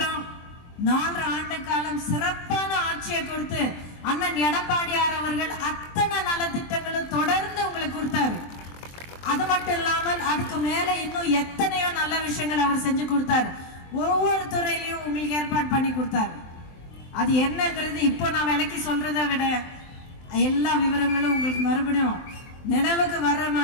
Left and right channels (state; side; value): late; right; 23 ms